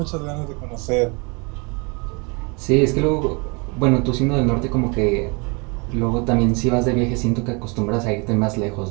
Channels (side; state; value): left; quieter; 30.6 dB